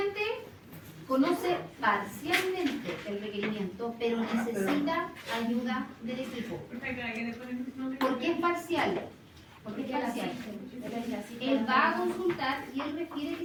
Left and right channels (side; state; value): both; identical; correlation 1.00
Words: conoce parcialmente el requerimiento, pero necesita ayuda del equipo. ¿Por qué es parcial? Porque es parcial. Él va a consultar y él refiere